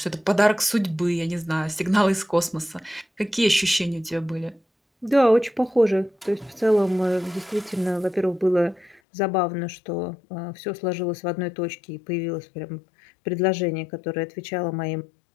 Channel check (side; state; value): right; drops out; at 9.0 s